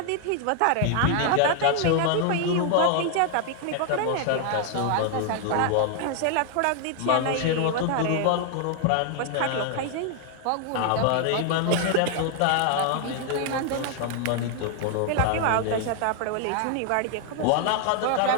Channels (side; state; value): both; different; correlation 0.00